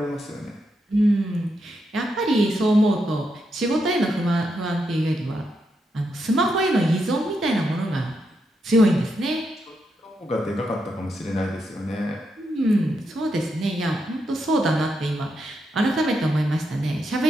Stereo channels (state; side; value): normal; both; correlation 0.82